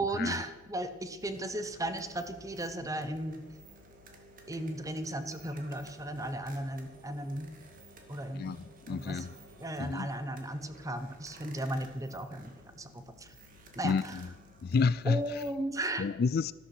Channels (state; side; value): noise; left; hum, 26 dB below the sound